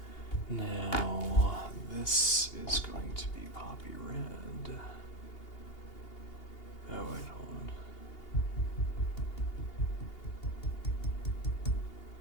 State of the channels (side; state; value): right; late; 2.8 ms